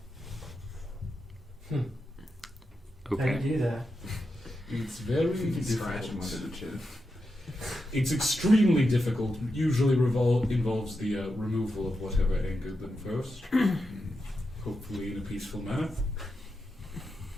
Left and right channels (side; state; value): both; normal; correlation 0.87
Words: How Okay. do you do that? It's very Scratch him difficult. under the chin. It's extremely difficult. Usually involves the removal of whatever angered them first. Hopefully in a peaceful manner.